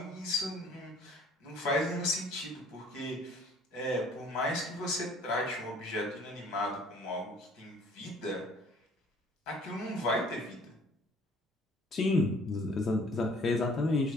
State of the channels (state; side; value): normal; both; correlation 0.55